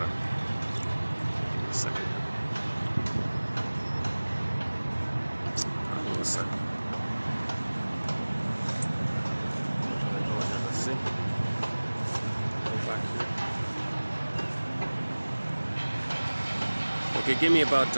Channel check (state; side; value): inverted; both; correlation -1.00